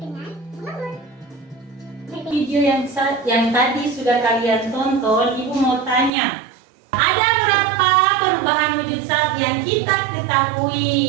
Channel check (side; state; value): left; drops out; at 6.1 s